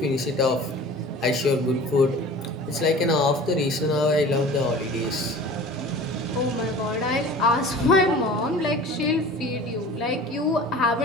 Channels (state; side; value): normal; both; correlation 0.41